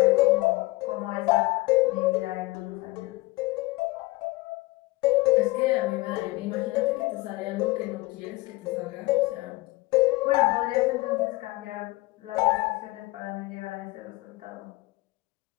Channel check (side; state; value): right; quieter; 21.2 dB